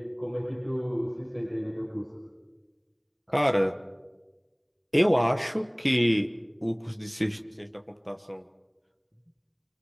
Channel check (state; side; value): identical; both; correlation 1.00